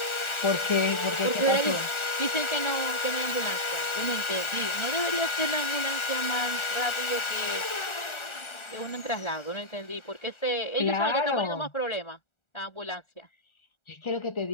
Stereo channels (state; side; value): late; right; 1.4 ms